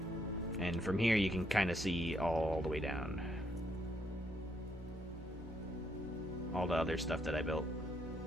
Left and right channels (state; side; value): normal; both; correlation 0.74